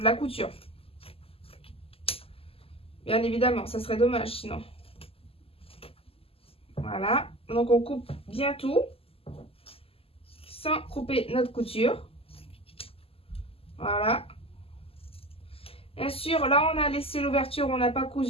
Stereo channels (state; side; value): late; right; 0.28 ms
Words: couture. Bien évidemment, ça serait dommage sinon. Voilà. Donc on coupe bien tout sans couper notre couture. Voilà. Bien sûr, là on a laissé l'ouverture, on n'a pas